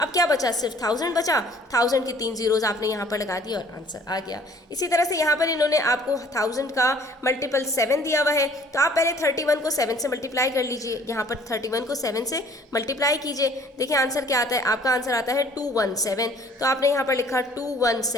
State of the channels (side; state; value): both; normal; correlation 0.55